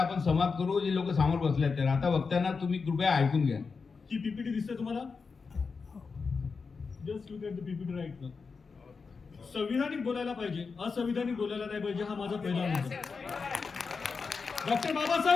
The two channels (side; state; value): right; quieter; 4.9 dB